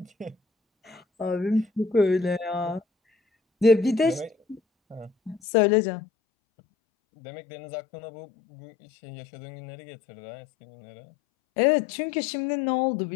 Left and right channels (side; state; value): right; drops out; at 5.4 s